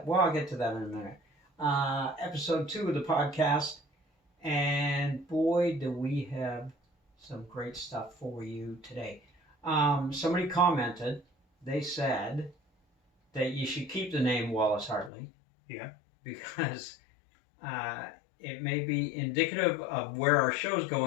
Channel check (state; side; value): drops out; right; at 15.1 s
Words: Well, I'll get to that in a minute. Episode 2 of the podcast, and boy, do we have some great stuff for you today. Somebody commented. They said that you should keep the name Wallace Hartley. Yeah. Because it may be indicative of where our show's